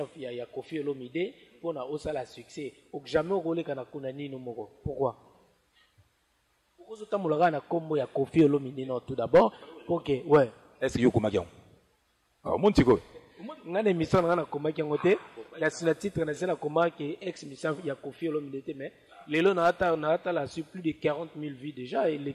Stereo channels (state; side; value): identical; both; correlation 1.00